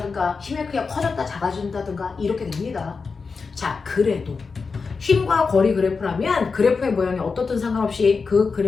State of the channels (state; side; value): quieter; right; 4.8 dB